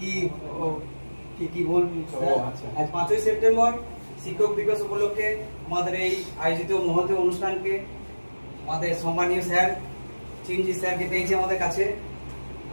কি বলবি? আজ 5ই সেপ্টেম্বর শিক্ষক দিবস উপলক্ষে আমাদের এই আয়োজিত মহৎ অনুষ্ঠানকে আমাদের সম্মানীয় স্যার চিরঞ্জিত স্যারকে পেয়েছি আমাদের কাছে।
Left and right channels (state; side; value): inverted; both; correlation -1.00